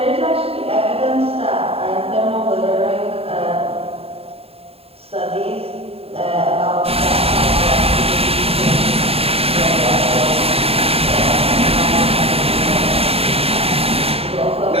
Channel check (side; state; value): left; late; 0.28 ms